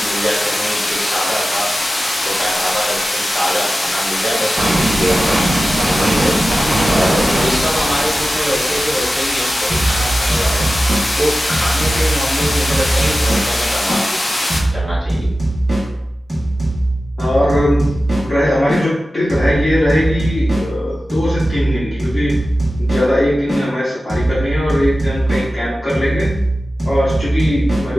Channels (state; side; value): normal; both; correlation 0.95